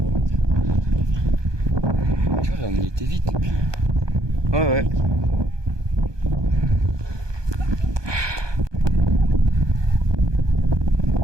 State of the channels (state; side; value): late; left; 1.2 ms